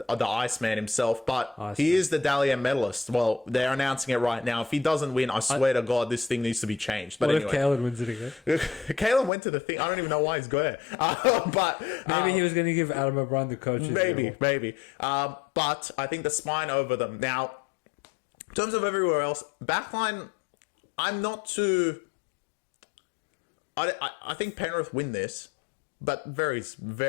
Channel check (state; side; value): drops out; right; at 9.3 s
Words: Iceman himself, but he is the Dally M medalist. Well, they're announcing it right now. If he doesn't win, I swear to God, this thing needs to be changed. But what anyway, if Kalen wins it again? Kalen went to the thing. I don't even know why he's there. But maybe he was going to give Adam O'Brien the coach. Maybe. But I think the spine over them. Now, in terms of everywhere else, backline, I'm not too... I think Penrith win this, but very,